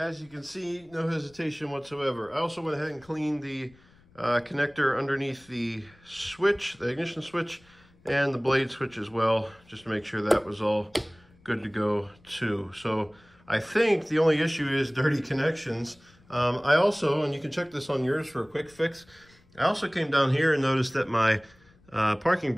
you can see, no hesitation whatsoever. I also went ahead and cleaned the connector underneath the switch, the ignition switch, and the blade switch as well, just to make sure that was all good to go too. So I think the only issue is dirty connections. I also, and you can check this on yours for a quick fix, I also came down here and noticed that my parking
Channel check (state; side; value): noise; left; rumble, 29 dB below the sound